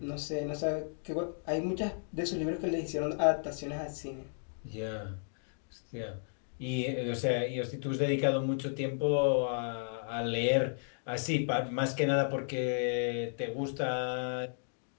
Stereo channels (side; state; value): right; silent; digital silence